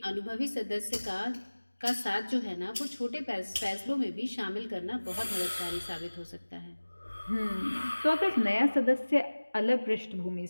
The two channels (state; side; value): inverted; both; correlation -1.00